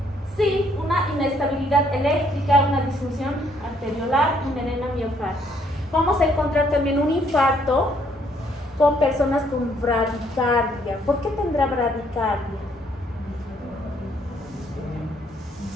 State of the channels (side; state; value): both; normal; correlation 0.67